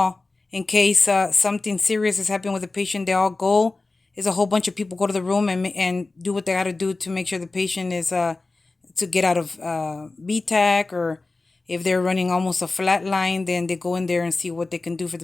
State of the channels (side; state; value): right; quieter; 3.4 dB